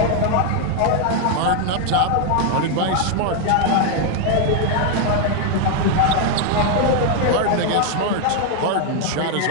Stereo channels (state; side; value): different; both; correlation 0.00